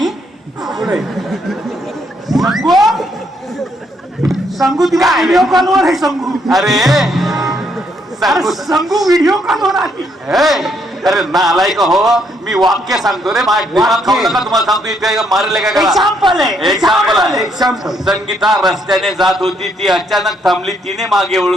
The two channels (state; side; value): normal; both; correlation 0.72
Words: सांगू तिला व्हिडिओ कॉलवर आहे. सांगू अरे संगू व्हिडिओ कॉलवर आली. अरे नालाय का हो, मी वाक्य सांगतो रे, माझ्या दिमाग खाऊ नका. तुम्हाला सांगतो इथे मारले काय करा. एक्झाम्पल आहे एक्झाम्पल आहे. एक्झाम्पल. संगीता रस्त्याने जात होती, ती अचानक थांबली, तिने मागे